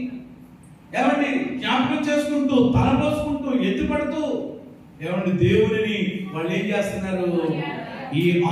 ఏమండి జ్ఞాపకం చేసుకుంటూ తలపోసుకుంటూ ఎత్తుపడుతూ ఏమండి దేవుడిని వాళ్ళు ఏం చేస్తున్నారు? ఈ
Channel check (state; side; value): identical; both; correlation 1.00